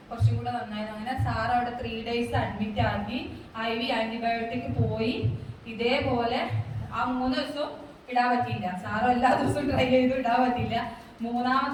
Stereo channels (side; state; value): both; identical; correlation 1.00